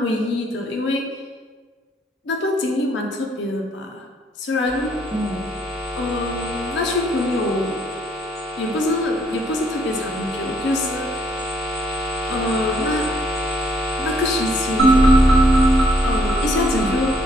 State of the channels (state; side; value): normal; both; correlation 0.68